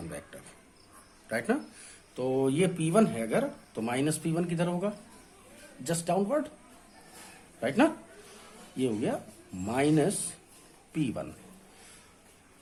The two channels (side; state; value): both; identical; correlation 1.00